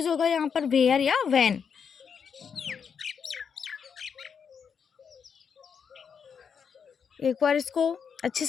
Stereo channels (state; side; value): quieter; right; 6.7 dB